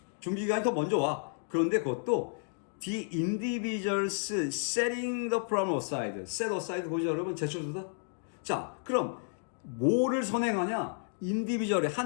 준비기간이 더 먼저 와. 그런데 그것도 the individuals setting the problem aside. set aside 보죠 여러분? 제쳐두다. 자, 그럼 뭐를 선행하냐? 인디비주얼의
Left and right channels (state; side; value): silent; right; 57 dB below the other